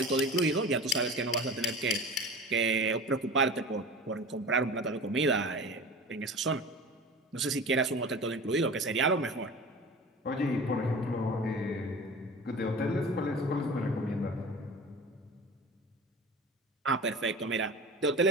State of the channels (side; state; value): both; normal; correlation 0.35